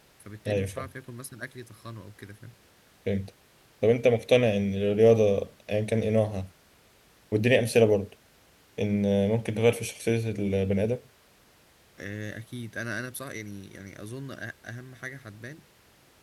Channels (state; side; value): identical; both; correlation 1.00